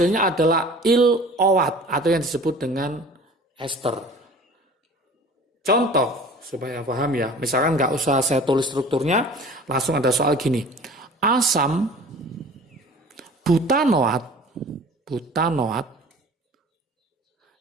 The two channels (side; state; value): both; normal; correlation 0.44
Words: adalah il-OAT atau yang disebut dengan ester. Contoh supaya paham ya, misalkan nggak usah saya tulis strukturnya, langsung ada soal gini. Asam butanoat